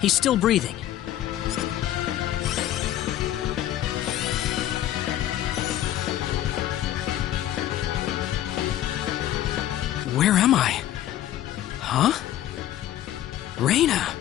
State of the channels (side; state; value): right; quieter; 12.7 dB